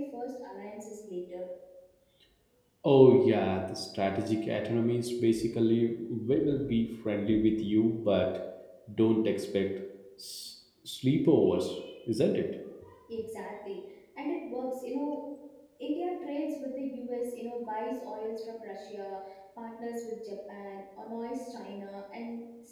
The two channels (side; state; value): both; identical; correlation 1.00